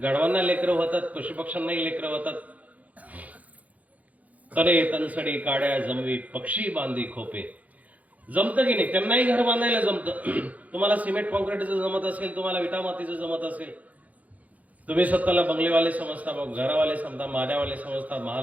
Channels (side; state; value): left; late; 0.074 ms